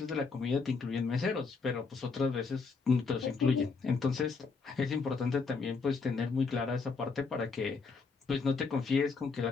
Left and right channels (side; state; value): right; quieter; 4.7 dB